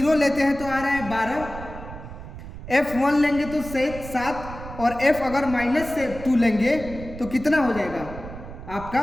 लेते हैं तो आ रहा है 12, f1 लेंगे तो 7, और f अगर -2 लेंगे तो कितना हो जाएगा, आपका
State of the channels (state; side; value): noise; right; rumble, 12 dB below the sound